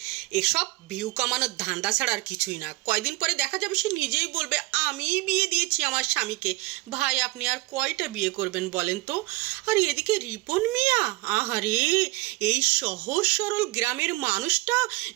এসব ভিউ কামানোর ধান্দা ছাড়া আর কিছুই না। কয়দিন পরে দেখা যাবে সে নিজেই বলবে আমিই বিয়ে দিয়েছি আমার স্বামীকে। ভাই আপনি আর কয়টা বিয়ে করবেন বলেন তো? আর এদিকে রিপন মিয়া, আহারে, এই সহজ সরল গ্রামের মানুষটা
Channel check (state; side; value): quieter; left; 21.9 dB